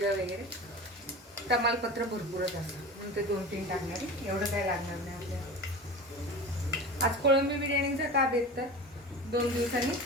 वगैरे, तमालपत्र भरपूरच असतं म्हणून ते 2-3 टाकणार आहे. एवढं काय लागणार नाही आपल्याला. आज कोळंबी बिर्याणीचा का बेत तर 2 दिवसांनी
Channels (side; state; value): both; normal; correlation 0.32